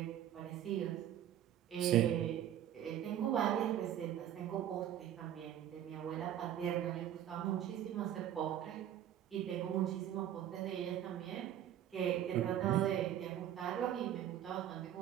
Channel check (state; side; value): quieter; left; 11.1 dB